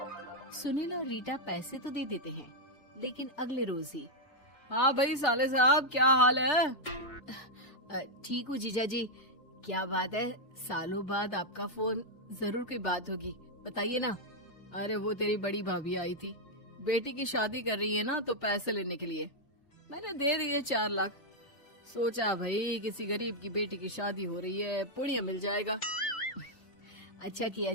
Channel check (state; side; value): late; right; 3.4 ms